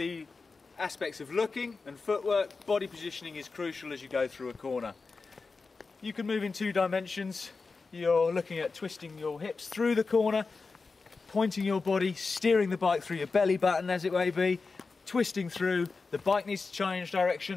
aspects of looking and footwork, body positioning is crucial as you go through a corner. You can move in two dimensions. You're looking at twisting your hips through the corner, pointing your body, steering the bike through your belly button as it may be, twisting through. The bike needs to change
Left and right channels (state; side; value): quieter; right; 4.3 dB